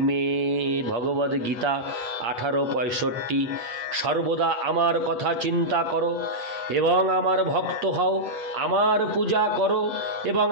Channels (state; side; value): late; left; 8.4 ms